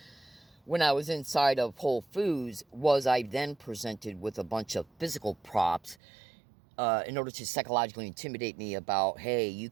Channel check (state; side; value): drops out; left; at 6.0 s